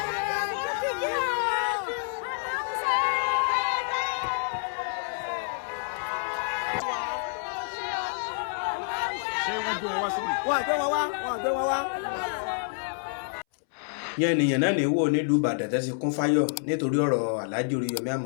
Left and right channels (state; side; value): silent; right; 59 dB below the other